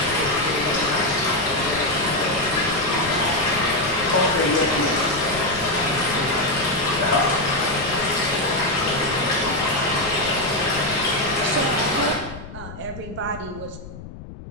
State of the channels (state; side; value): noise; left; rumble, 14 dB below the sound